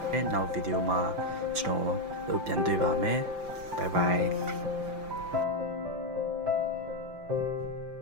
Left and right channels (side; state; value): left; late; 5.9 ms